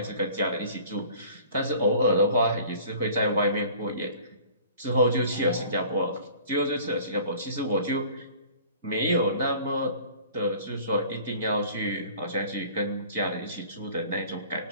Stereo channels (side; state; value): both; inverted; correlation -0.47